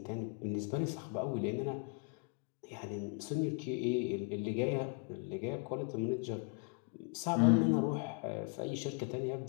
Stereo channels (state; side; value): quieter; right; 32.5 dB